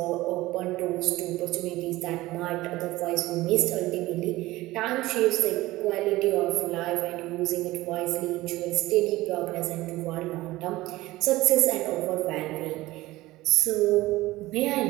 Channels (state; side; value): quieter; left; 18.2 dB